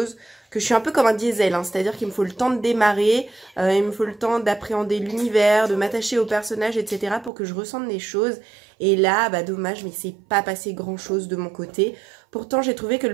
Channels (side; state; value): left; drops out; at 7.3 s